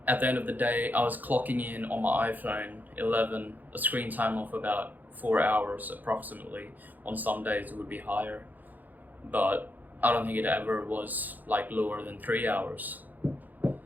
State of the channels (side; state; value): left; late; 0.084 ms